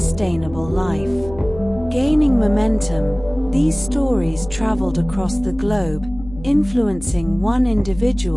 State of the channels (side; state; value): left; noise; hum, 15 dB below the sound